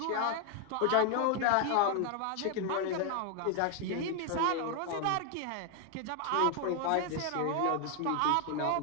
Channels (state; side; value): different; both; correlation 0.00